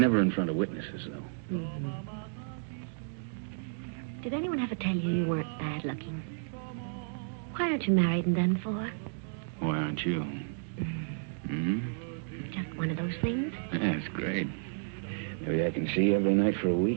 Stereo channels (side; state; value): left; silent; digital silence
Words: in front of witnesses, though. Mm-hmm. Did anyone ever tell you weren't bad looking? Why aren't you married and done for? Why aren't you? Mm-hmm. Just one of those things? Yeah, it's great. Maybe I can see you every night for a